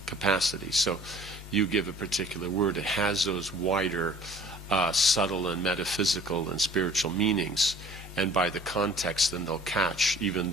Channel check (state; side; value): normal; both; correlation 0.51